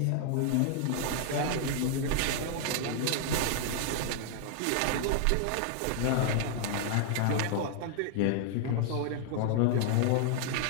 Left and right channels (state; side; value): different; both; correlation -0.01